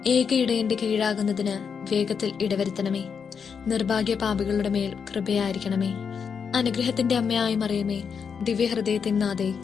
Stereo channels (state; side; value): quieter; right; 6.4 dB